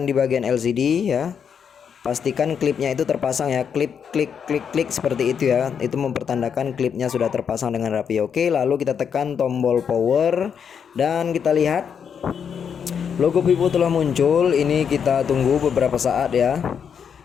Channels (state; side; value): quieter; right; 7.3 dB